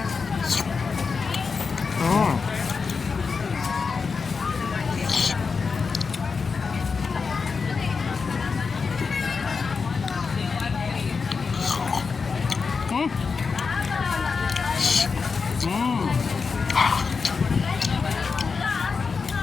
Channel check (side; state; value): right; quieter; 5.1 dB